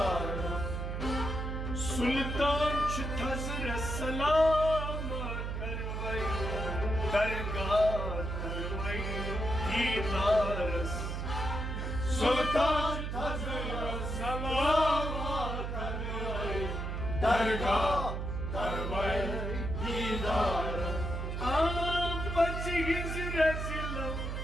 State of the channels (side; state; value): right; noise; hum, 3 dB below the sound